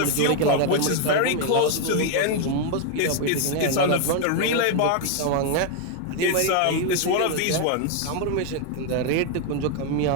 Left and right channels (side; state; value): both; different; correlation 0.01